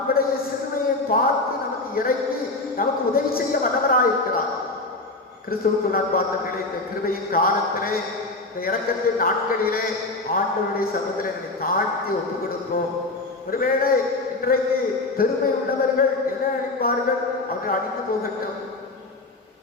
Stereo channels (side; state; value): right; quieter; 3.1 dB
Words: சிறுமையை பார்த்து நமக்கு இறங்கி நமக்கு உதவி செய்ய வல்லவராயிருக்கிறார். கிறிஸ்துவுக்கு நான் பார்த்தவர்களே, இந்த கிருபையின் காலத்திலே, இந்த இறக்கத்தின் நாட்களிலே ஆண்டவருடைய சமூகத்திலே தாழ்த்தி ஒப்பு கொடுப்போம். ஒருவேளை இன்றைக்கு பெருமை உள்ளவர்கள் என்ன நினைப்பார்கள்? அவர்கள் அழிந்து போகட்டும்.